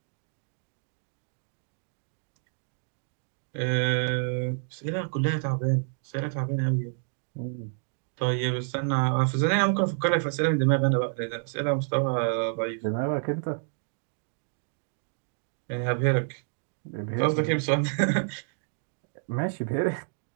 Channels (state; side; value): silent; left; digital silence